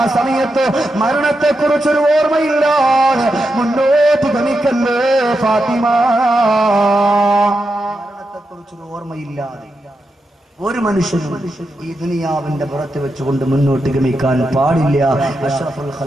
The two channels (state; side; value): normal; both; correlation 0.87